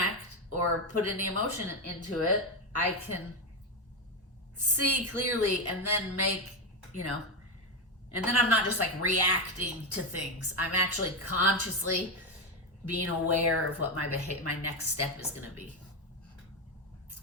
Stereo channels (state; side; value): normal; both; correlation 0.10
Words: or put any emotion into it, I can see clearly and then make, you know, and then I'm not just like reacting to things. I'm actually consciously being aware of what my next step is going to be.